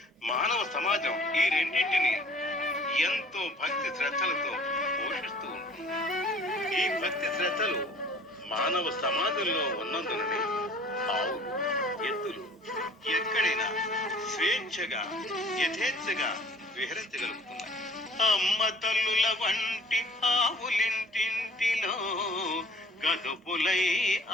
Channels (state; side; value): normal; both; correlation 0.51